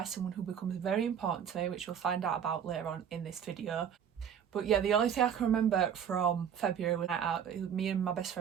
someone who becomes very important to me, which we'll find out about later on in this video. But yeah, the only thing I can remember from February was out. Me and my best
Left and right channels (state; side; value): quieter; left; 8.3 dB